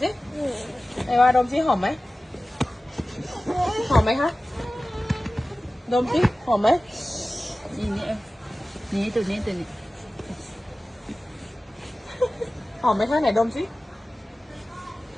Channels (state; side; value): normal; both; correlation 0.96